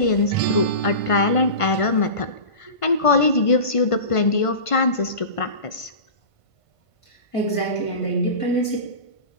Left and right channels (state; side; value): late; right; 1.5 ms